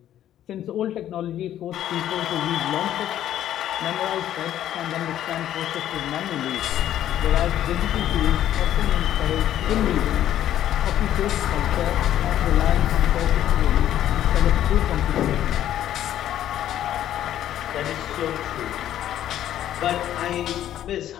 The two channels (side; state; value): right; quieter; 11.7 dB